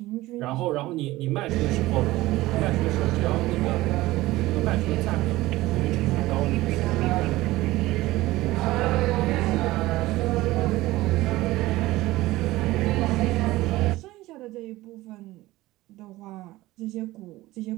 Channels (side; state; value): left; quieter; 17.9 dB